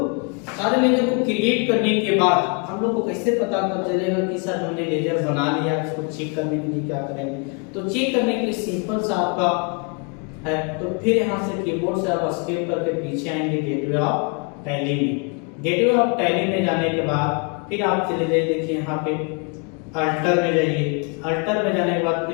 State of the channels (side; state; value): right; quieter; 35.8 dB